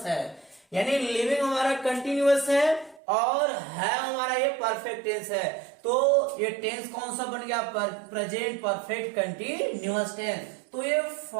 है। यानी लिविंग हमारा कंटिन्यूअस है और है हमारा ये परफेक्ट टेंस है। तो ये टेंस कौन सा बन गया, प्रेजेंट परफेक्ट कंटिन्यूअस टेंस। तो ये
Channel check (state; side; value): drops out; left; at 3.0 s